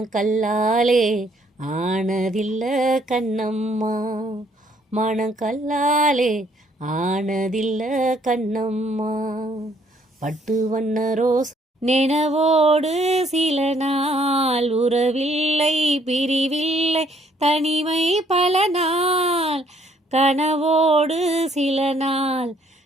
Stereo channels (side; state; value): both; normal; correlation 0.65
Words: ஆனதில்ல கண்ணம்மா. மனக்கல்லாலே ஆனதில்ல கண்ணம்மா. பட்டு வண்ண ரோஸ் நினைவோடு சில நாள், உறவில்லை பிரிவில்லை தனிமை பல நாள். கனவோடு சில நாள்,